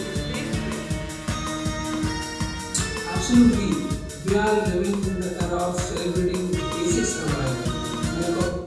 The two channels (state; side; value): identical; both; correlation 1.00